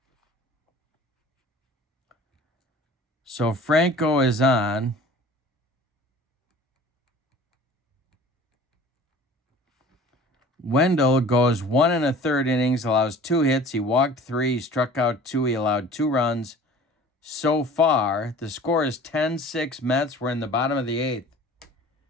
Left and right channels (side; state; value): both; normal; correlation 0.45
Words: So Franco is on. Wendell goes 1 1/3 innings, allows 2 hits. He walked 3, he struck out 2, he allowed 2 runs. So far, the score is 10-6 Mets. We're in the bottom of the 8th.